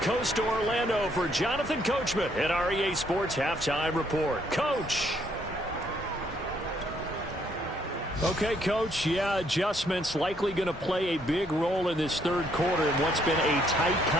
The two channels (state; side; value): normal; both; correlation 0.69